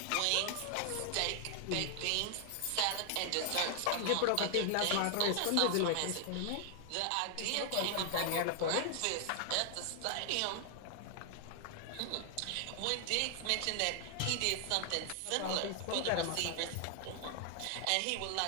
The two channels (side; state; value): both; different; correlation 0.00